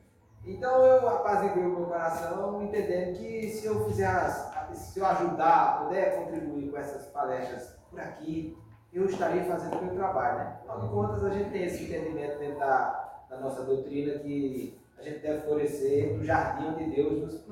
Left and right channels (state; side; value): identical; both; correlation 1.00